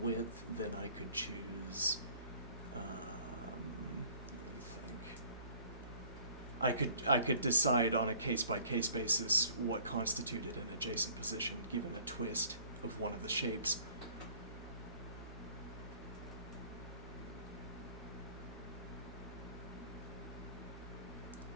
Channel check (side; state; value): both; inverted; correlation -0.52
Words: then I could choose, let me think. I could decide on a case-by-case basis what constituted an adjacent position given a twist of one of the shapes.